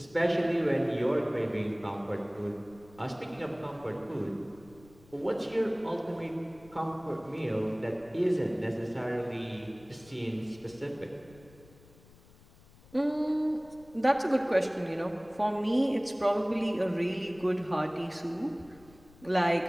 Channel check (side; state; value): left; noise; rumble, 25 dB below the sound